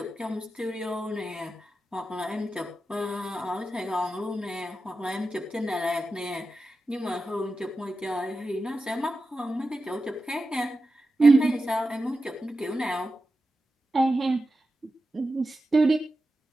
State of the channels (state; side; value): normal; both; correlation 0.92